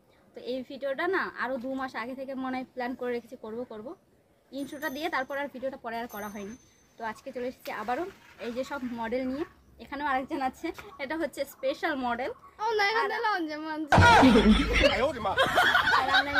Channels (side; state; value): both; identical; correlation 1.00